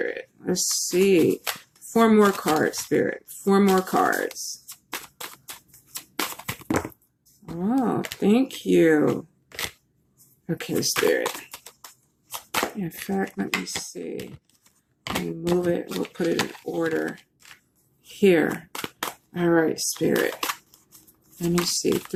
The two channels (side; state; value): both; identical; correlation 1.00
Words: Let's see. 4 more cards, Spirit. 4 more cards. Oh, thank you. Okay, Spirit. In fact, let me see. Let me move it. We'll put it in order. Here. All right, Spirit. Let me see.